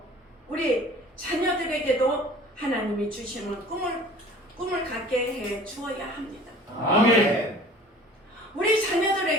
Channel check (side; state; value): both; normal; correlation 0.46